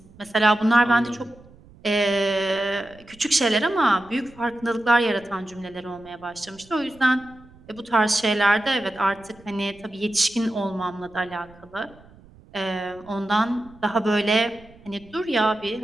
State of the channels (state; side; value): noise; right; rumble, 25 dB below the sound